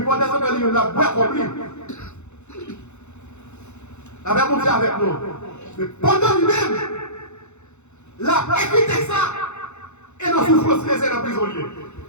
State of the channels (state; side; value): late; right; 0.83 ms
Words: moi, descendre dans le livre, la boîte comme lui. La même chose avec nous. Mais pendant lui-même, la évité ça. Et nos souffrances, c'est dans la prison.